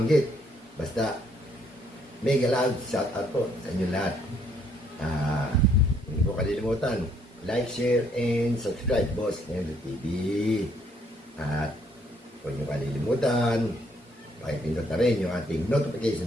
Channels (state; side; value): normal; both; correlation 0.68